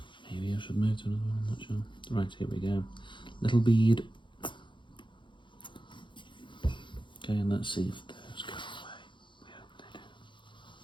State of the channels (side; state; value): right; late; 0.23 ms